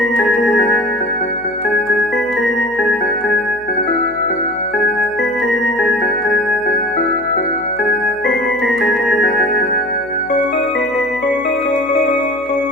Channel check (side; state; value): left; noise; hum, 26 dB below the sound